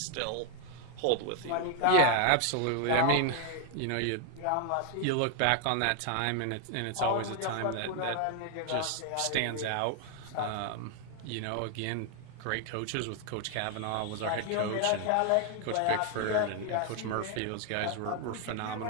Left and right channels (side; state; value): both; different; correlation 0.01